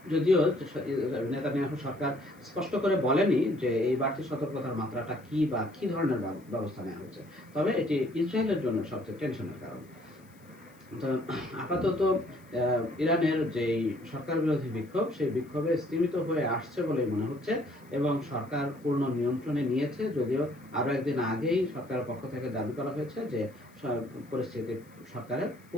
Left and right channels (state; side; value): noise; left; hiss, 30 dB below the sound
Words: যদিও নেতানিয়াহু সরকার স্পষ্ট করে বলেনি যে এই বাড়তি সতর্কতার মাত্রাটা কি বা কি ধরনের ব্যবস্থা নেওয়া হয়েছে, তবে এটি ইসরায়েলের জন্য সবচেয়ে টেনশনের কারণ। তো আপাতত ইরানের যেই সরকার বিরোধী বিক্ষোভ, সেই বিক্ষোভে স্তীমিত হয়ে আসছে বলেই মনে হচ্ছে এবং সরকার পূর্ণ নিয়ন্ত্রণে নিয়েছে, যদিও আরও একদিন আগেই সরকারের পক্ষ থেকে দাবি করা হয়েছে যে পরিস্থিতি সরকারের